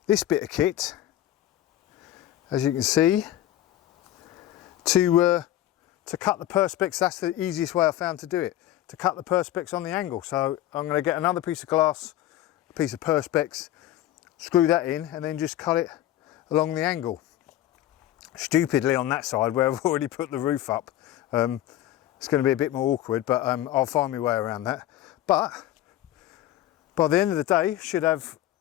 this bit of kit, as you can see, to cut the Perspex. That's the easiest way I found to do it, to cut the Perspex on the angle. So I'm going to get another piece of glass, a piece of Perspex, screw that in, and then just cut it along the angle. Stupidly on that side where I've already put the roof up. It's going to be a bit more awkward, but I'll find my way around that. But by the end of the day, should have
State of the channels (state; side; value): quieter; right; 13.4 dB